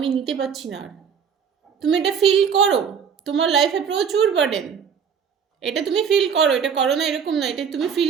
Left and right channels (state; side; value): quieter; left; 7.0 dB